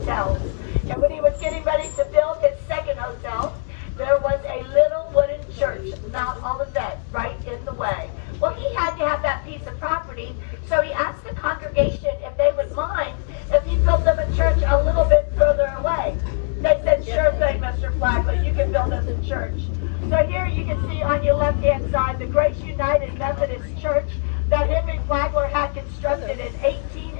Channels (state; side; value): silent; right; digital silence